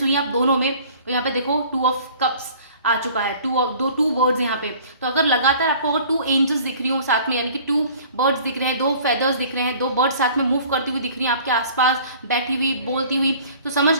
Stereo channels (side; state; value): both; inverted; correlation -0.50